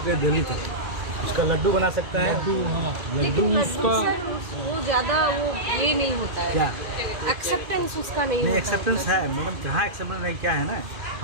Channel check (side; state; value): left; late; 2.1 ms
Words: हैं दिल्ली तक। उसका लड्डू बना सकते हैं, लड्डू उसका वो ज़्यादा वो ये नहीं होता है, क्या एक्सेप्टेंस उसका नहीं होता। एक्सेप्टेंस है मैडम, कहाँ एक्सेप्टेंस नहीं, क्या है ना,